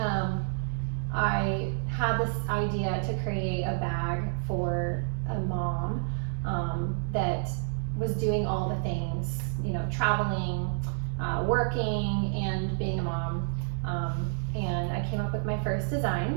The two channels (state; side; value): silent; left; digital silence